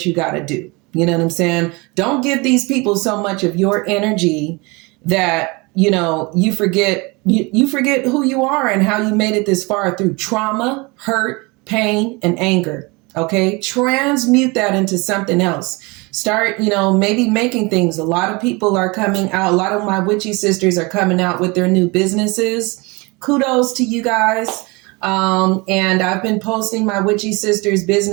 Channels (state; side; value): quieter; left; 26.5 dB